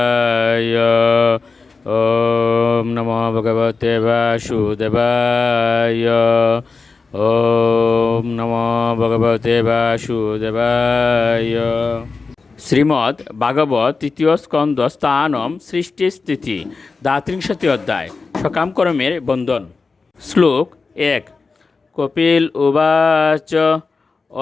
ওম নমো ভগবতে বাসুদেবায়। ওম নমো ভগবতে বাসুদেবায়। শ্রীমদ্ ভাগবত তৃতীয় স্কন্দ স্থানম সৃষ্টি স্থিতি দ্বাত্রিংশতি অধ্যায় সকামকর্মের বন্ধন। শ্লোক 1। কপিল উবাচ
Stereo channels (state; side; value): quieter; right; 4.3 dB